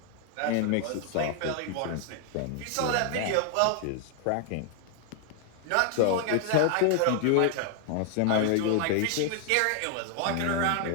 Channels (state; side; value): different; both; correlation 0.00